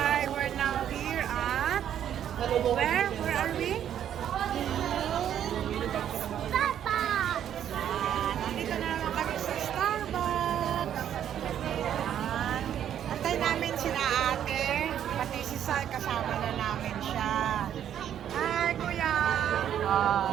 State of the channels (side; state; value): left; quieter; 10.0 dB